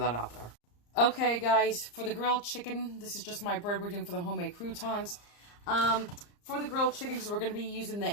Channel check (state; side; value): late; right; 34 ms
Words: out there. Okay, guys, for the grilled chicken, this is just my bread we're doing for the homemade croutons. For the grilled chicken, because we're going to be using